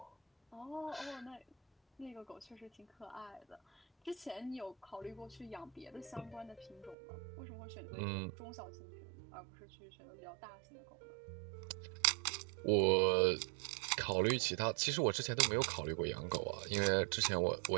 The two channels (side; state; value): left; drops out; at 7.0 s